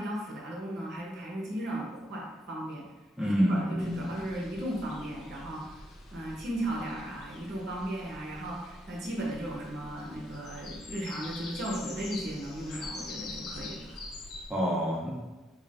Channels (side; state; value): both; normal; correlation 0.78